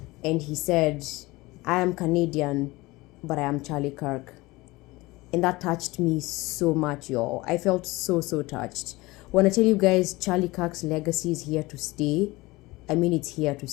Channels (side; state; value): right; quieter; 21.3 dB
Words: and he said, I am Canadian, but I am Charlie Kirk. And that touched me so much, y'all. I felt so touched. When I tell you guys Charlie Kirk's legacy is here to stay, I mean it's here to